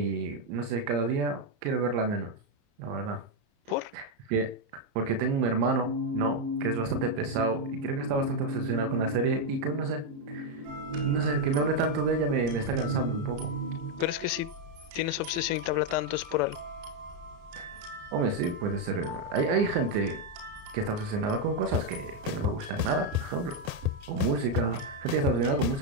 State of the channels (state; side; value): late; left; 29 ms